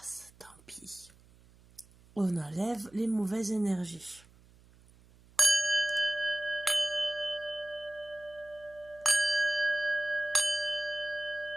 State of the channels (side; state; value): right; noise; hum, 27 dB below the sound